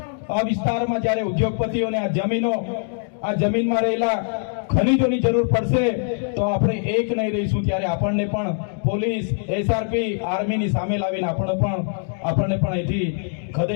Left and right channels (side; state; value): right; silent; digital silence